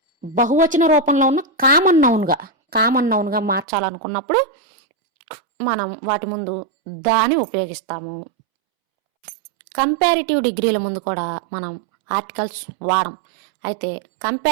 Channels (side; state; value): left; drops out; at 3.7 s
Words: బహువచన రూపంలో ఉన్న కామన్ నౌన్గా మార్చాలనుకున్నప్పుడు మనం వాటి ముందు దాని ఉపయోగిస్తాము. కంపారిటివ్ డిగ్రీల ముందు కూడా మనం ఆర్టికల్స్ వాడం. అయితే